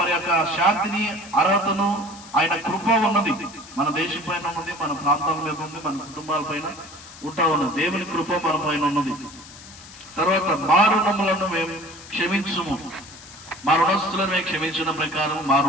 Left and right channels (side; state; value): left; noise; hiss, 18 dB below the sound